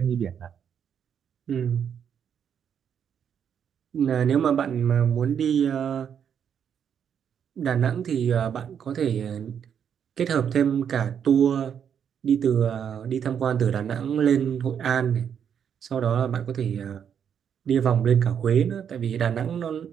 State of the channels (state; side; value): quieter; left; 8.1 dB